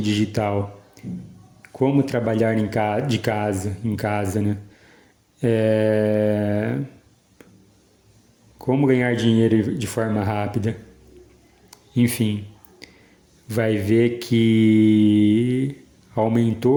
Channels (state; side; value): identical; both; correlation 1.00